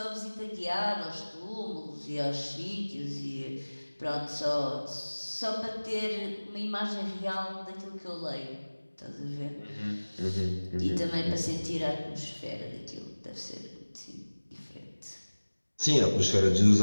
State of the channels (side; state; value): both; inverted; correlation -1.00